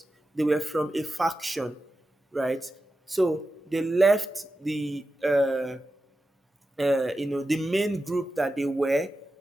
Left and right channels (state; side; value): normal; both; correlation 0.91